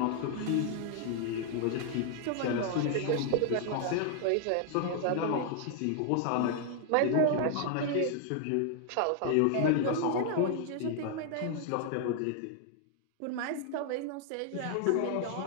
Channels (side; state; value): both; different; correlation 0.00